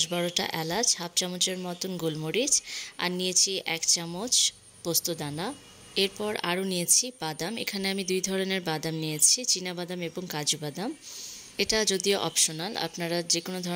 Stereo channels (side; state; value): both; identical; correlation 1.00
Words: এলাচ, হাফ চামচের মতন গোলমরিচ, আর নিয়েছি 1 চামচ পোস্তদানা। এরপর আরও নিয়েছি বাদাম। এখানে আমি 2 ধরনের বাদাম নিয়েছি, চীনা বাদাম এবং কাজু বাদাম। এটা যদিও অপশনাল, আপনারা যে কোনো